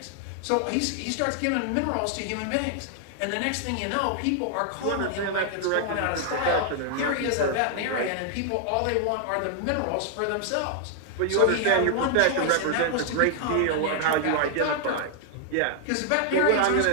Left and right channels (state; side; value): different; both; correlation 0.00